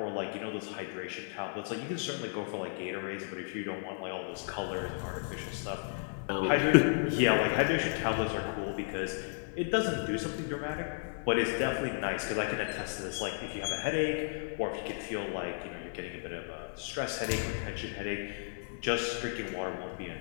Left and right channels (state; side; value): silent; right; digital silence